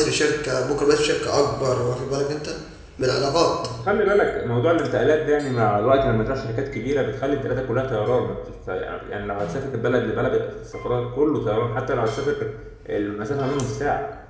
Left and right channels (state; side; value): identical; both; correlation 1.00